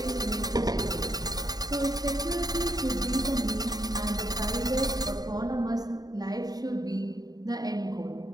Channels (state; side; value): late; left; 0.19 ms